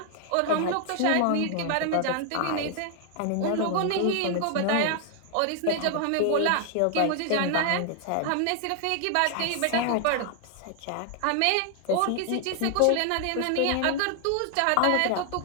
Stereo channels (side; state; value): both; different; correlation 0.00